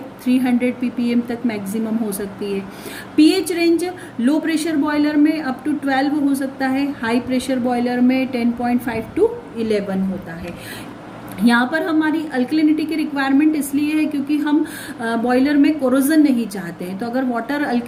300 ppm तक मैक्सिमम हो सकती है। PH range low pressure boiler में अप टू 12 हो सकता है, हाई प्रेशर बॉयलर में 10.5 to 11 होता है। यहाँ पर हमारी अल्कलिनिटी की रिक्वायरमेंट इसलिए है क्योंकि हम बॉयलर में कोरोजन नहीं चाहते हैं। तो अगर वाटर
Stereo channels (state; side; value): identical; both; correlation 1.00